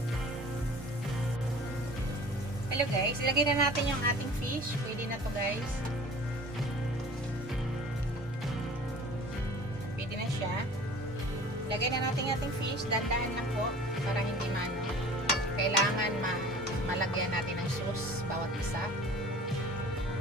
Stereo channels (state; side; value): normal; both; correlation 0.44